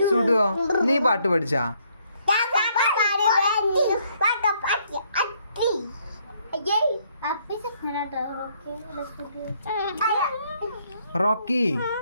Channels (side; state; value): both; inverted; correlation -0.69